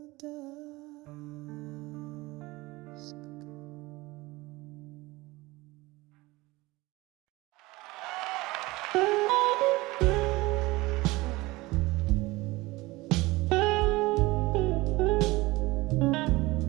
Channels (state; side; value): quieter; left; 21.1 dB